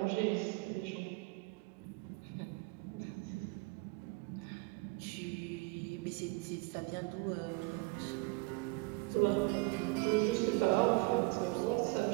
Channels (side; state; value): left; quieter; 24.7 dB